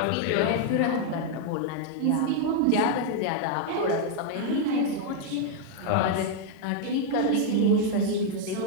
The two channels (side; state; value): both; different; correlation 0.00